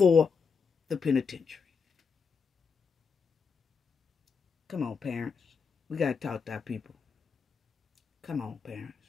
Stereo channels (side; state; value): right; quieter; 5.5 dB